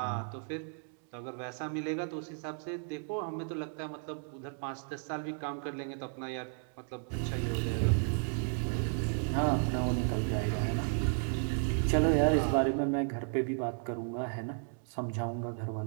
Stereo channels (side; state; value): left; silent; 55 dB below the other